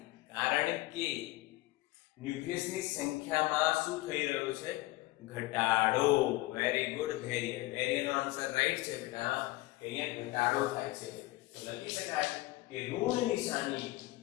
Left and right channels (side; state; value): right; quieter; 19.2 dB